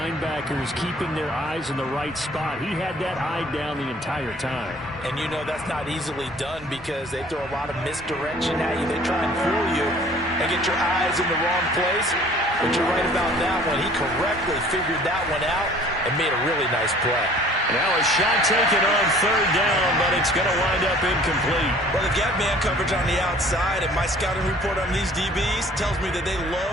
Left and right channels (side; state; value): both; normal; correlation 0.52